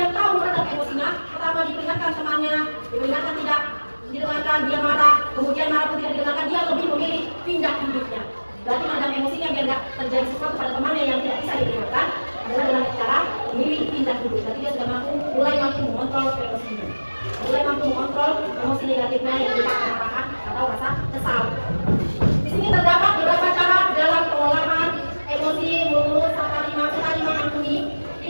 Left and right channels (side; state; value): both; inverted; correlation -1.00